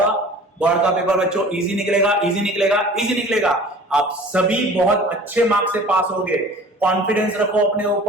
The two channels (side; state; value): both; normal; correlation 0.45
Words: बोर्ड का पेपर बच्चों इजी निकलेगा, इजी निकलेगा, इजी निकलेगा। आप सभी बहुत अच्छे मार्क्स से पास होगे, कॉन्फिडेंस रखो अपने